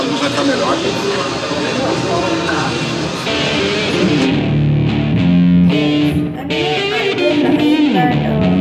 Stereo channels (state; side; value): identical; both; correlation 1.00